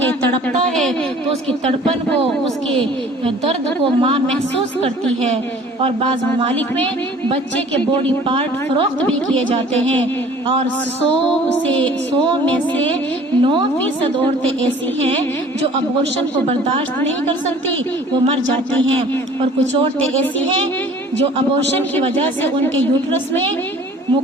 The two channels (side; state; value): both; normal; correlation 0.50